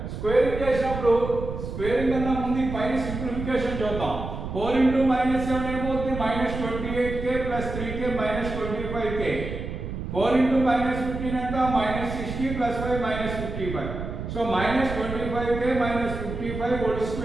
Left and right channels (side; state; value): right; noise; rumble, 6 dB below the sound